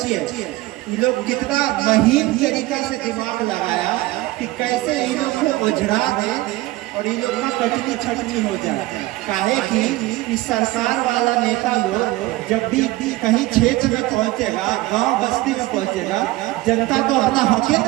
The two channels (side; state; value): left; quieter; 18.7 dB